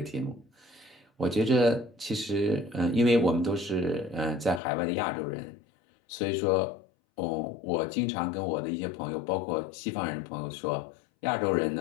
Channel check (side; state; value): right; drops out; at 4.6 s